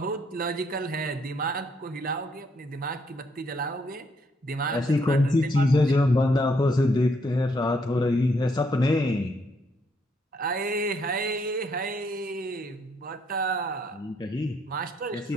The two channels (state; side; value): normal; both; correlation 0.72